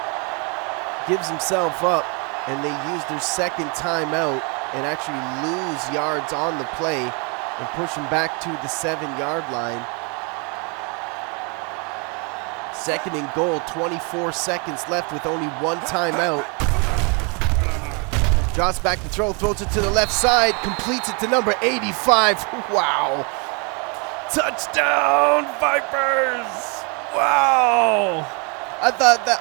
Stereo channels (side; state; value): left; quieter; 33.6 dB